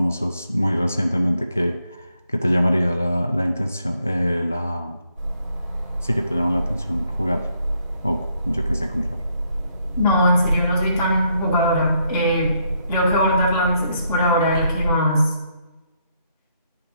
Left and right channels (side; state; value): both; inverted; correlation -0.75